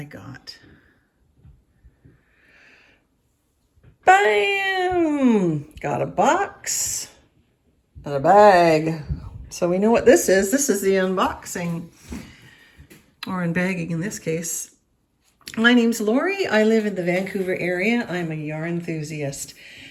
got BAM! Got a box and a bag. So we know what this is. This is the unboxing, or unbagging in this case. My name's Lori. I live in the Vancouver area. I'm a yarn enthusiast.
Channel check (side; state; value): both; identical; correlation 1.00